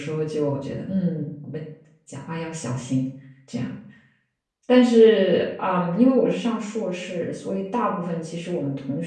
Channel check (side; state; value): both; identical; correlation 1.00